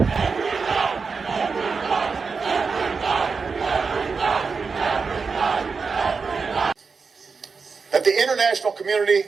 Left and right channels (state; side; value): quieter; left; 5.0 dB